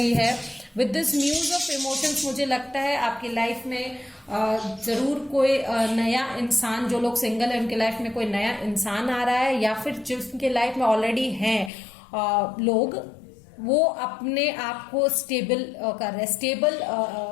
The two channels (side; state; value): right; drops out; at 11.7 s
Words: है। With this muse of emotions मुझे लगता है आपकी लाइफ में जरूर कोई नया इंसान, जो लोग सिंगल है उनके लाइफ में कोई नया इंसान आ रहा है, या फिर जिनके लाइफ में ऑलरेडी हैं लोग, वो अपने आप को स्टेबल कर रहे हैं,